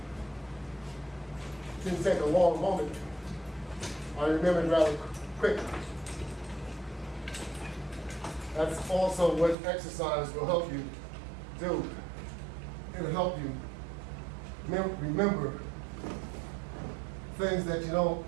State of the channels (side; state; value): left; drops out; at 9.6 s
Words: It didn't take a long moment. I remembered rather quickly. That's also what exercise will help you do. It'll help you remember things that you don't